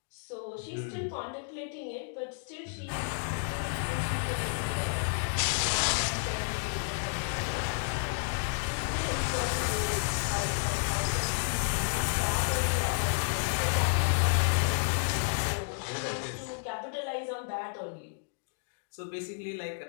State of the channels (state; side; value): silent; right; digital silence